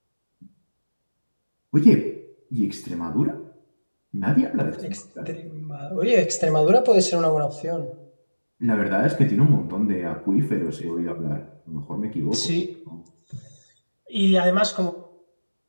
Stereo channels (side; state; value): both; inverted; correlation -1.00